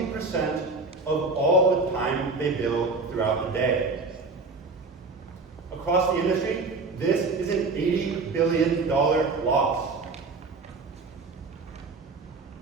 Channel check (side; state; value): left; quieter; 3.9 dB